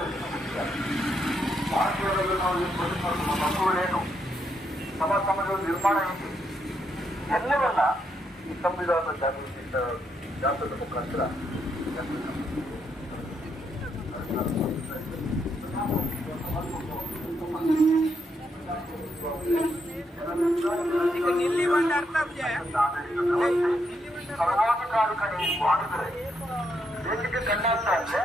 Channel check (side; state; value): both; normal; correlation 0.78